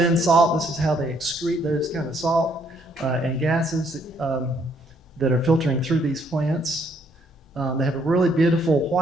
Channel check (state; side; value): normal; both; correlation 0.68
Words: salt, this is how they excrete those kind of salt and gases that are filtering through these plants. They have a really beautiful